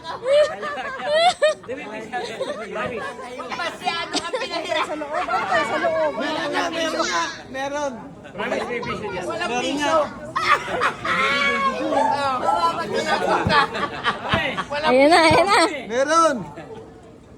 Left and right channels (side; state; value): both; identical; correlation 1.00